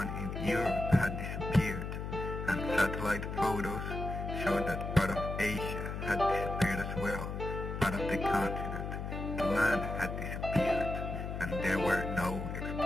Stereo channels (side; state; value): left; noise; hum, 5 dB below the sound